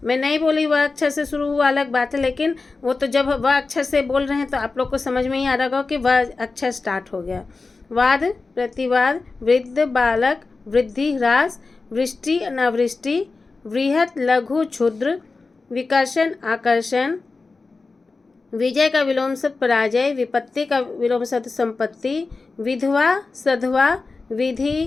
मैं नहीं बोली वह अक्षर से शुरू हुआ अलग बात है, लेकिन वो तो जब वह अक्षर से बोल रहे हैं तो आप लोग को समझ में ही आ रहा होगा कि वह अक्षर स्टार्ट हो गया। वाद प्रतिवाद, वृद्ध बालक, वृद्धि ह्रास, वृष्टि अनावृष्टि, बृहत, लघु, क्षुद्र। विकर्षण, आकर्षण। विजय का विलोम शब्द पराजय। विपत्ति का विलोम शब्द संपत्ति। विधवा, सधवा।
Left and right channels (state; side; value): quieter; right; 3.9 dB